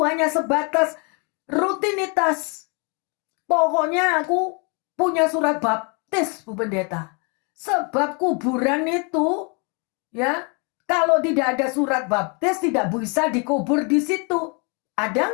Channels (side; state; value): right; quieter; 34.4 dB